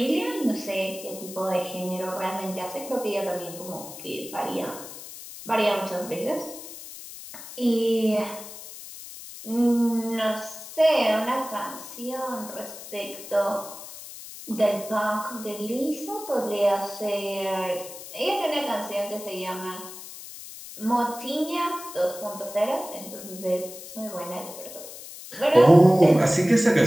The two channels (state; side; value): noise; left; hiss, 13 dB below the sound